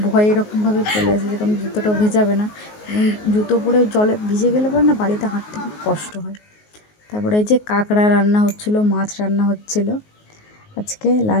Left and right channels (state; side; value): late; right; 19 ms